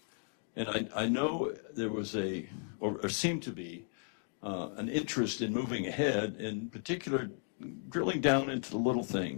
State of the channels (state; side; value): silent; right; 54 dB below the other